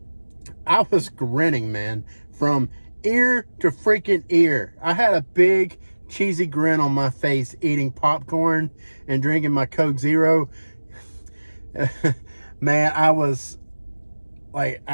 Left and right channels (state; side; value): inverted; both; correlation -1.00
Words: I was grinning, man, from ear to freaking ear. I had a big cheesy grin on my face eating popcorn and drinking my Coke Zero. Man, I was like,